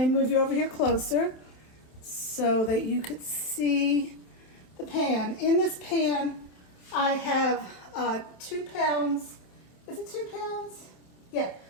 move you over here closer so that you could see the pan. In this pan, I have 2 pounds. Is it 2 pounds? Yeah,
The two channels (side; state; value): right; late; 27 ms